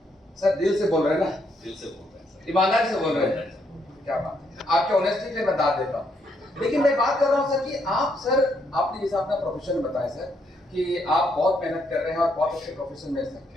सर, दिल से बोल रहे हैं ना? दिल से बोल रहे हैं सर, ईमानदारी से बोल रहे हैं। क्या बात है, आपके ऑनेस्टी के लिए मैं दाद देता हूँ। लेकिन मैं बात कर रहा हूँ सर कि आप सर, आपने जैसा अपना प्रोफेशन बताया सर कि आप बहुत मेहनत कर रहे हैं और बहुत अच्छे प्रोफेशन में सर,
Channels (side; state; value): both; normal; correlation 0.75